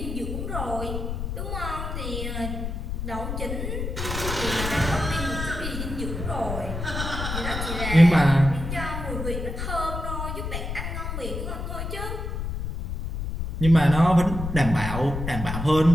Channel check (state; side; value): noise; left; rumble, 5 dB below the sound